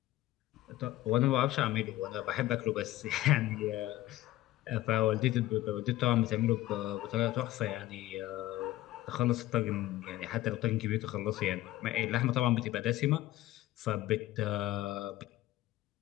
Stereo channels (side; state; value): right; quieter; 15.9 dB